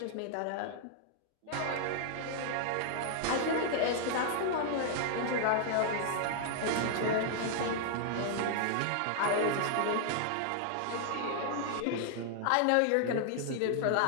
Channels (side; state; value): both; different; correlation 0.00